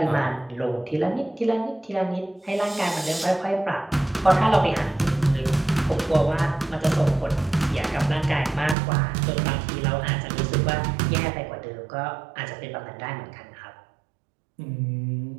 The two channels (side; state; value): left; drops out; at 8.8 s